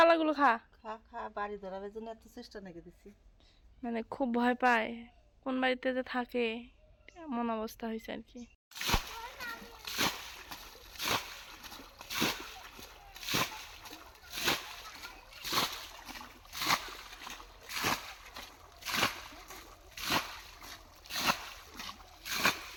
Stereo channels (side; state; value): both; identical; correlation 1.00